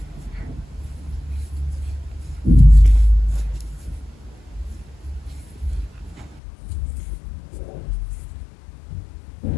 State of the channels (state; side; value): drops out; right; at 6.4 s